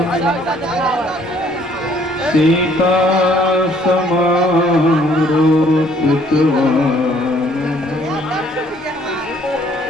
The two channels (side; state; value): both; normal; correlation 0.61